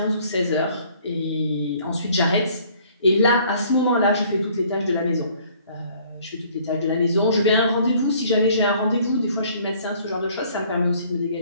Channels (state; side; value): inverted; both; correlation -0.57